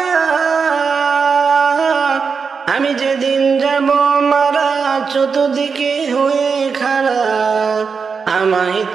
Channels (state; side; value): quieter; left; 5.5 dB